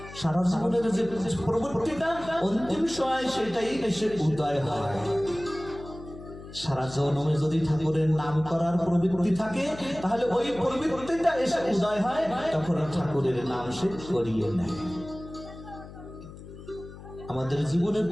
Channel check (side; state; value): left; noise; hum, 15 dB below the sound